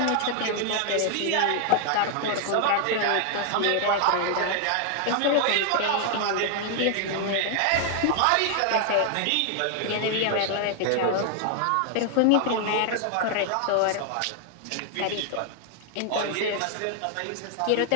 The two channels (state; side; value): different; both; correlation 0.00